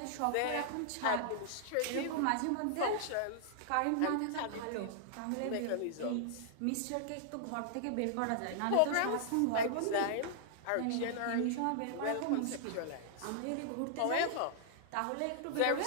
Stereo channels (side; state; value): both; different; correlation -0.01